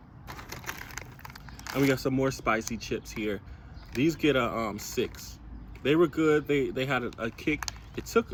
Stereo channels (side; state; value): both; identical; correlation 1.00